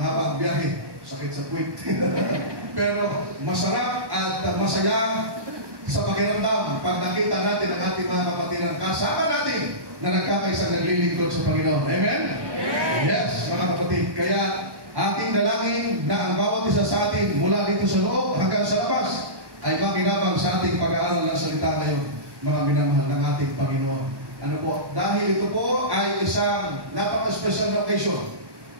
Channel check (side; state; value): left; late; 1.1 ms